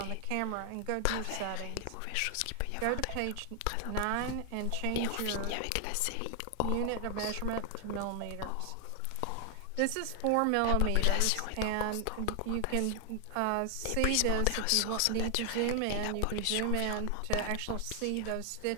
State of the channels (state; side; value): different; both; correlation 0.00